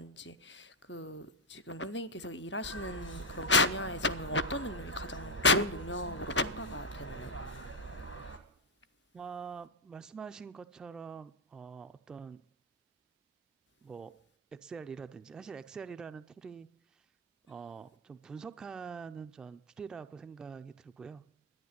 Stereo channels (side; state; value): both; normal; correlation 0.00